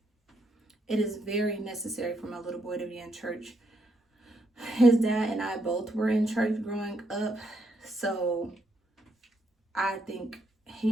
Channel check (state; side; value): normal; both; correlation 0.77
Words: It is very necessary for my little boy to be in church. His dad and I both were in church growing up, so I think